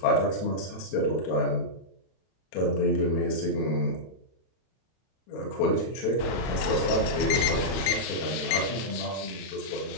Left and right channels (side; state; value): right; late; 32 ms